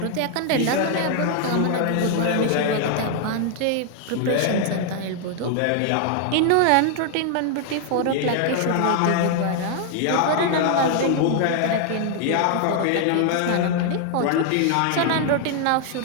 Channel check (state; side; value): different; both; correlation 0.00